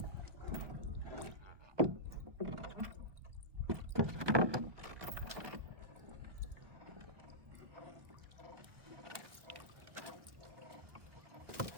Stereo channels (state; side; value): late; left; 1.2 ms